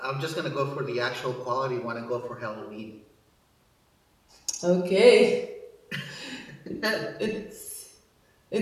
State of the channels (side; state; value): both; identical; correlation 1.00